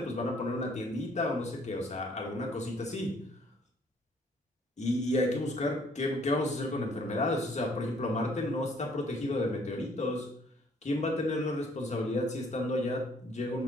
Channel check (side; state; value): both; normal; correlation 0.62